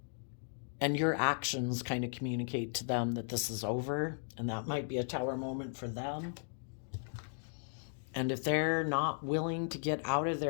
And your actions kind of communicate to them that this is over, and that might be a tower moment for them. And if they're not willing to get out of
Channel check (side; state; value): right; silent; digital silence